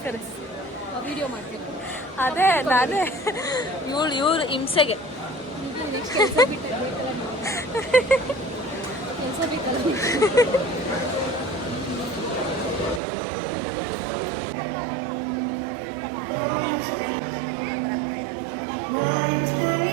ವಿಡಿಯೋ ಮಾಡ್ಬೇಕು. ಅದೇ ನಾನೇ ಇವ್ರು ಹಿಂಸೆಗೆ. ನೆಕ್ಸ್ಟ್ ಕೆಲಸ ಬೇಕಲ್ಲ.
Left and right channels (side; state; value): left; drops out; at 13.0 s